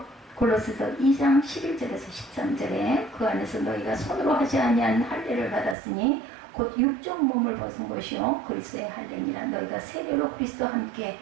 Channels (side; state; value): left; drops out; at 5.8 s